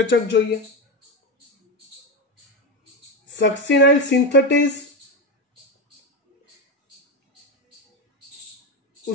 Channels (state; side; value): normal; both; correlation 0.15